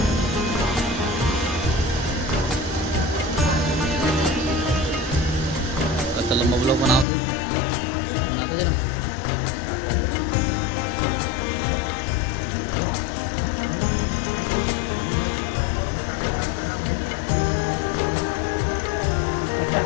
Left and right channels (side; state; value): right; drops out; at 7.1 s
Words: लोग बनाओ तो बनाते जरा।